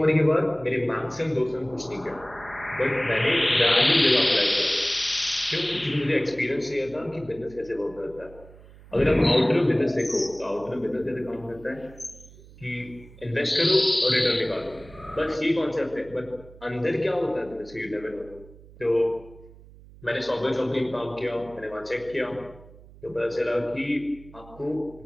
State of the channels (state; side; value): noise; right; hum, 21 dB below the sound